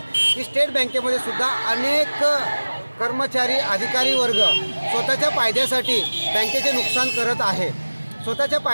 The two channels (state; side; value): inverted; both; correlation -1.00